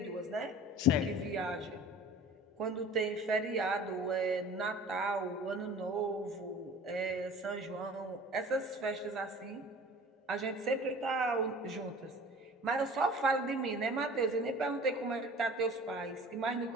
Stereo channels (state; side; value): normal; both; correlation 0.43